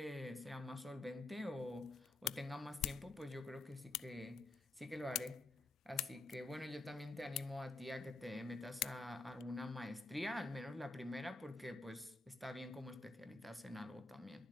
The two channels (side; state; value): right; quieter; 3.2 dB